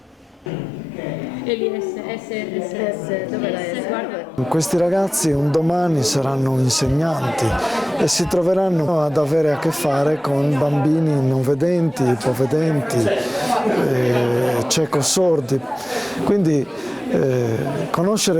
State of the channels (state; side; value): normal; both; correlation 0.94